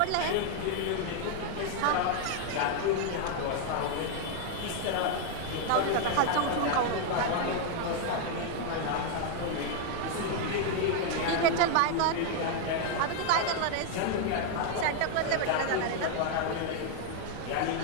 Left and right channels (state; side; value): different; both; correlation 0.00